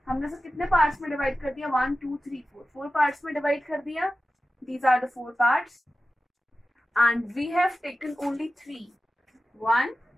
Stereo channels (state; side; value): normal; both; correlation 0.94